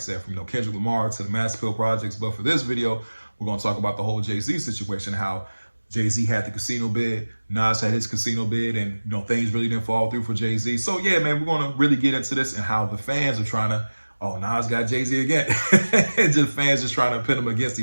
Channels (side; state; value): both; inverted; correlation -1.00